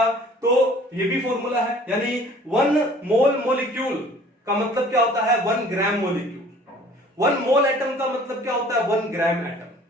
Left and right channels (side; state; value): both; normal; correlation 0.51